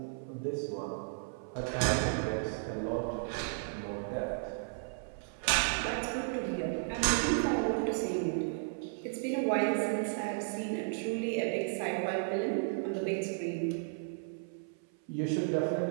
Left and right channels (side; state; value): left; silent; 55 dB below the other